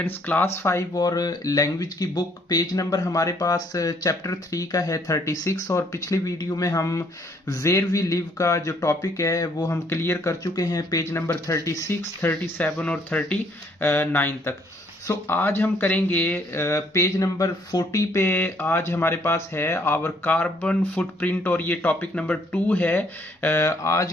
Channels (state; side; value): normal; both; correlation 0.65